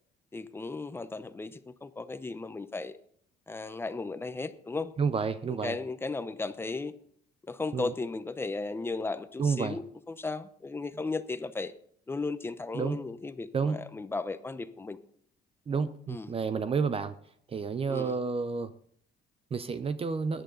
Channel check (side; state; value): both; normal; correlation 0.72